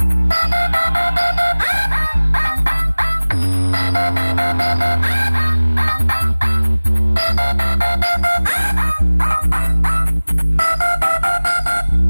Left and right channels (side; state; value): both; inverted; correlation -1.00